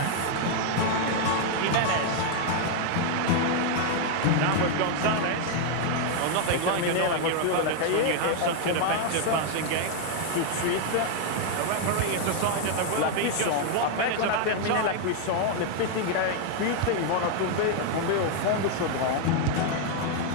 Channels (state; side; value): different; both; correlation 0.00